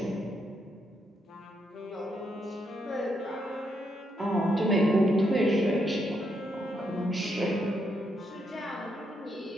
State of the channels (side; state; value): both; normal; correlation 0.78